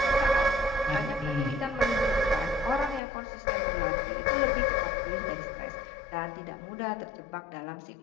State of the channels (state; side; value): drops out; right; at 3.0 s